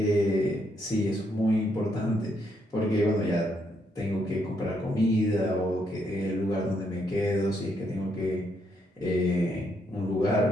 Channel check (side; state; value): both; normal; correlation 0.76